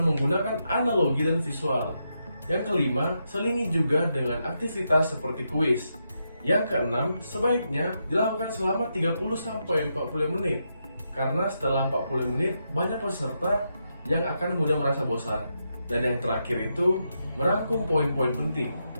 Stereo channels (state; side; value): inverted; both; correlation -0.83